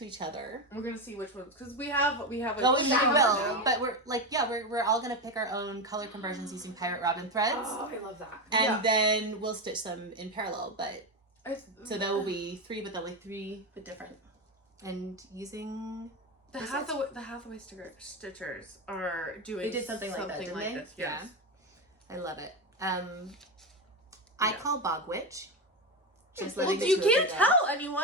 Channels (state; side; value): normal; both; correlation 0.14